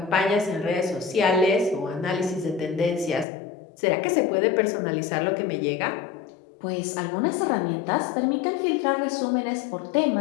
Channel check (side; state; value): right; drops out; at 3.2 s